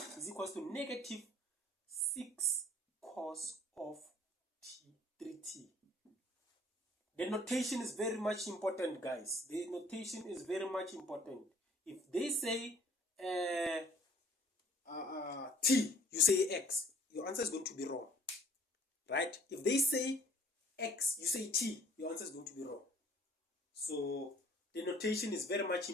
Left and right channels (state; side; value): normal; both; correlation 0.55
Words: Is equals to negative 6 cos of 3t. The notation is very much important, guys. The notation is very much important. If they say t, you say x, your answer is going to be wrong, right? If they say x, you say t, your answer is going to be wrong. So the notation is very much